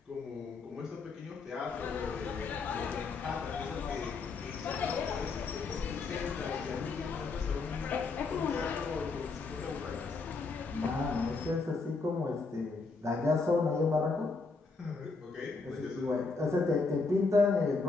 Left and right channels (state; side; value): quieter; right; 4.1 dB